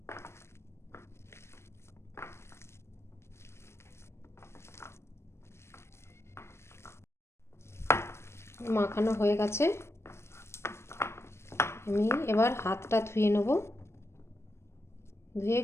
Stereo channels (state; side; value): late; right; 0.13 ms